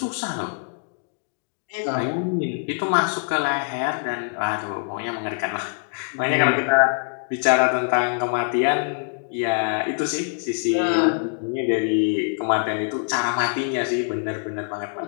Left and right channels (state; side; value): silent; right; 63 dB below the other